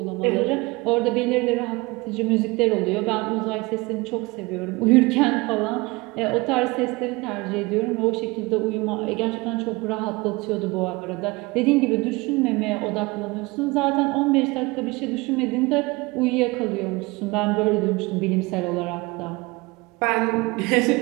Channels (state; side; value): quieter; left; 23.9 dB